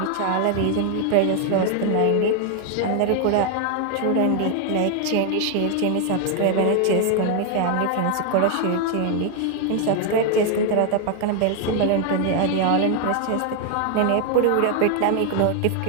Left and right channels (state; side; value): different; both; correlation 0.00